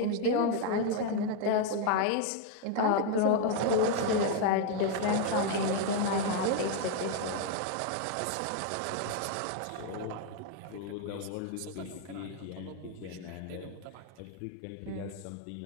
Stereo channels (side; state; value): both; different; correlation 0.00